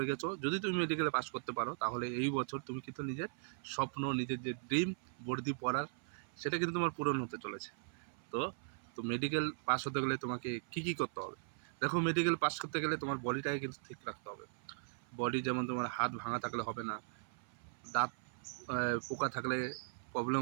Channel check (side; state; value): left; silent; 52 dB below the other